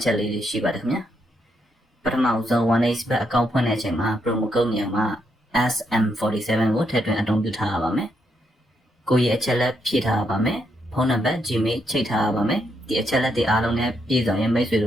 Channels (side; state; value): both; normal; correlation 0.78